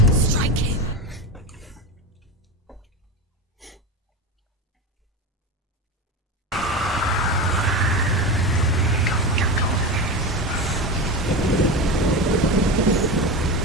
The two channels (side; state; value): both; normal; correlation 0.22